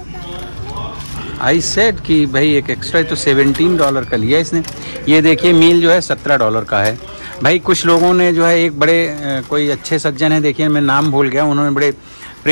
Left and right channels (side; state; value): both; inverted; correlation -1.00